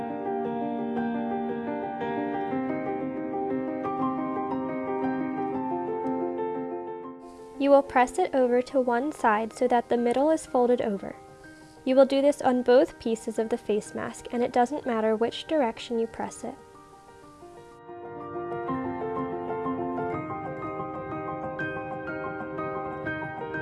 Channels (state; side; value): identical; both; correlation 1.00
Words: You will press it over to one side so that the middle is folded over. You will do this on both pieces of the face mask, and it doesn't matter which direction you press it.